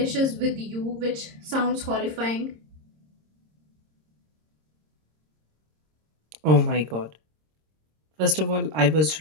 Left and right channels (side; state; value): left; late; 26 ms